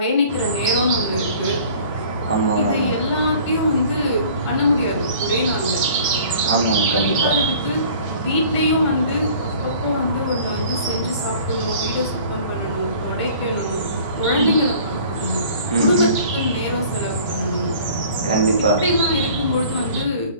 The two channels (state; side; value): inverted; both; correlation -0.49